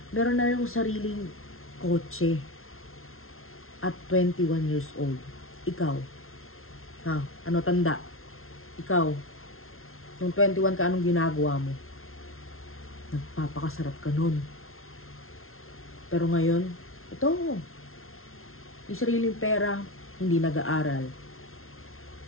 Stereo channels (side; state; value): right; late; 0.62 ms